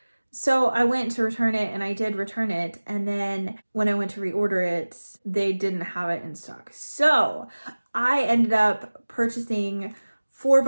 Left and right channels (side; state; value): both; inverted; correlation -1.00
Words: So I went to return it, and I did return it, and then when I went to reorder it, they didn't have it in stock. So I ended up purchasing 4